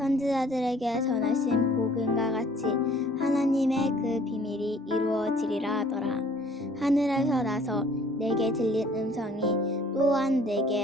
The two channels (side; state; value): both; normal; correlation 0.56